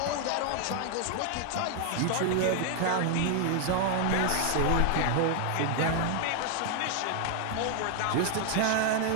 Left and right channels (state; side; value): different; both; correlation 0.00